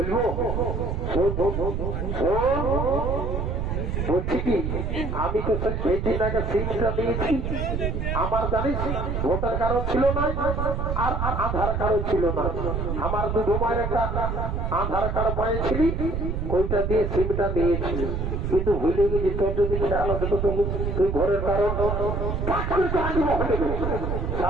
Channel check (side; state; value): right; noise; rumble, 1 dB below the sound